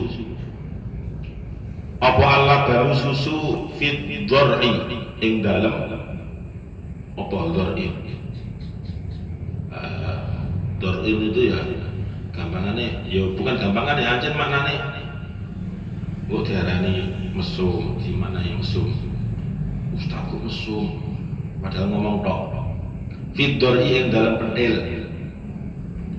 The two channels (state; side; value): identical; both; correlation 1.00